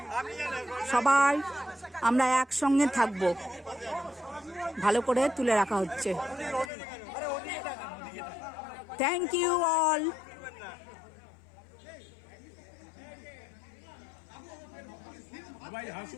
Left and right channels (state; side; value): drops out; right; at 6.7 s